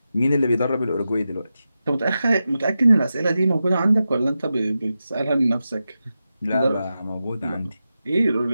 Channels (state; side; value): inverted; both; correlation -0.91